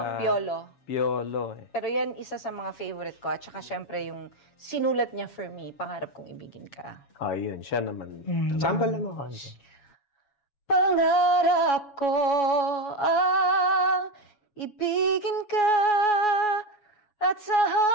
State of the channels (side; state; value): right; late; 7.2 ms